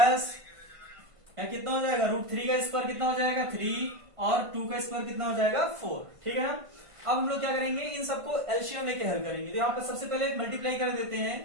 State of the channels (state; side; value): late; left; 1.5 ms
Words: या कितना हो जाएगा √3 का स्क्वायर कितना हो जाएगा 3 और 2 का स्क्वायर कितना हो जाएगा 4। ठीक है ना। अब हम लोग क्या करेंगे, इन सबको एलसीएम लेके हल करेंगे। तो यहाँ पर सबसे पहले मल्टीप्लाई कर देते